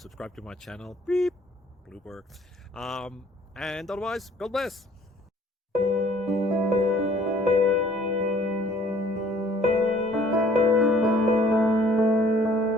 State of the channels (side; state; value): both; normal; correlation 0.57